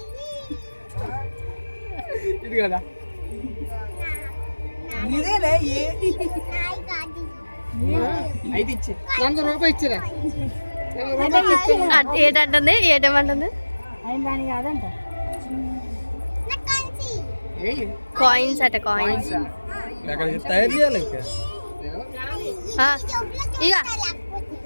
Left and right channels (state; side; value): inverted; both; correlation -1.00